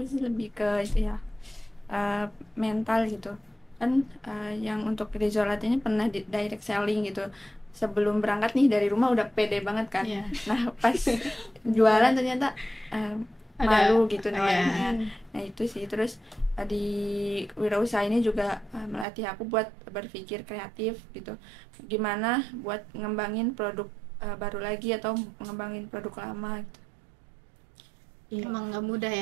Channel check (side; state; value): left; drops out; at 19.1 s